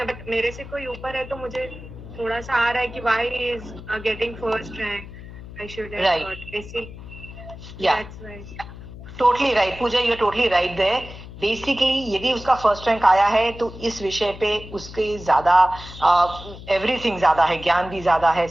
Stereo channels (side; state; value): left; noise; hum, 14 dB below the sound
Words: बट मेरे से कोई ऊपर है तो मुझे थोड़ा सा आ रहा है कि why he is getting first rank, I should have got ऐसे। That's right, totally right Pooja, you are totally right there. Basically यदि उसका फर्स्ट रैंक आया है तो इस विषय पे उसके ज्यादा एवरीथिंग ज्यादा है, ज्ञान भी ज्यादा है,